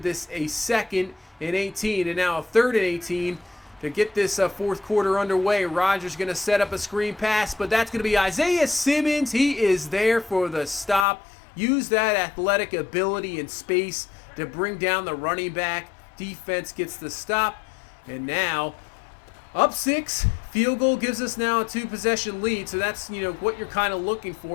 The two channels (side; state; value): right; drops out; at 11.1 s